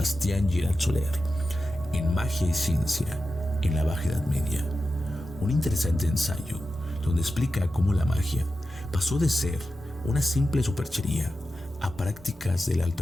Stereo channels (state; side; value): normal; both; correlation 0.92